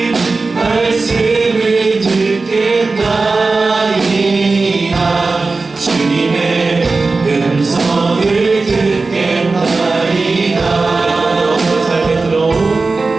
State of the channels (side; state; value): left; quieter; 3.8 dB